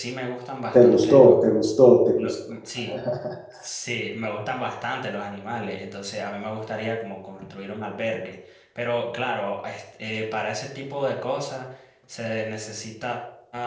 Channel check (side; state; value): both; identical; correlation 1.00